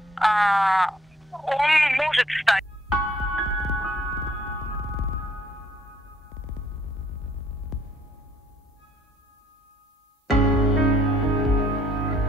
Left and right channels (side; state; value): both; normal; correlation 0.64